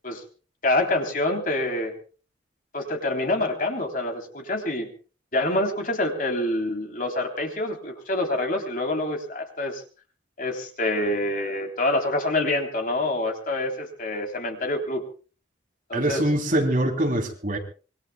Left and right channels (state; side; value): normal; both; correlation 0.21